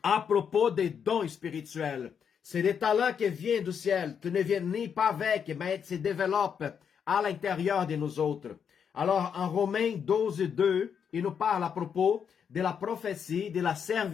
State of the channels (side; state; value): right; quieter; 7.4 dB